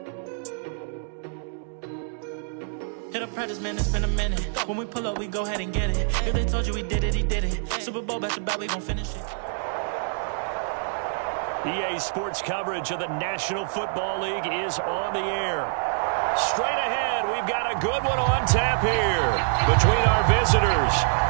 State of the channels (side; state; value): left; silent; digital silence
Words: Hit up practice, man, it's been a minute. When we pull up, we go ahead and get it. If they told you we did it, he did it. Super Bowl back to back, we gon' finish it. EA Sports coverage of the National Football League is on the air. Straight ahead, we've got a good one on tap here between our visitors